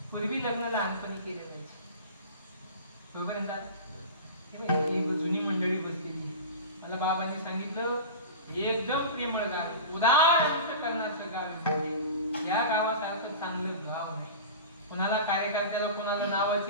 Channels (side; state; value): both; inverted; correlation -0.31